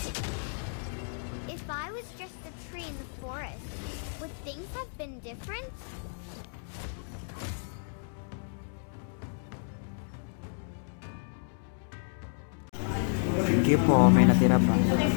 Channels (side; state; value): right; silent; digital silence